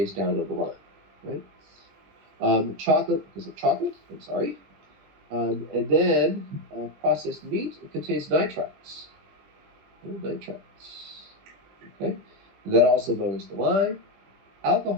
down on the line, right? Chocolate, because of chocolate, I'm sorry. And then processed meat, it contains nitrites. Nitrites. Okay? And that also lowers the line.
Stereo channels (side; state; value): left; late; 20 ms